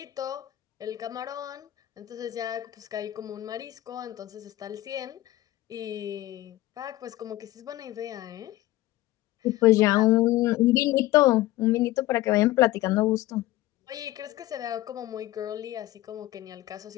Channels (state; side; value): quieter; right; 16.3 dB